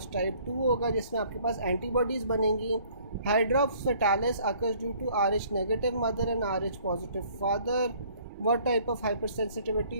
टाइप 2 होगा जिसमें आपके पास एंटीबॉडीज़ बनेंगी। Hydrops fetalis occurs due to RH negative mother and RH positive father. What type of hyper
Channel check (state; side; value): inverted; both; correlation -0.58